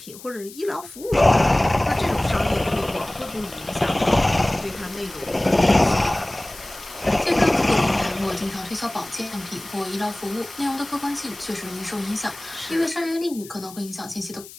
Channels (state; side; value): noise; left; hiss, 17 dB below the sound